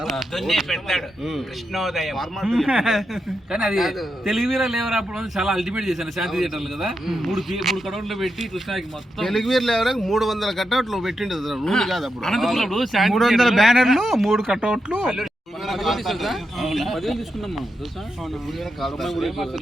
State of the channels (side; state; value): both; normal; correlation 0.86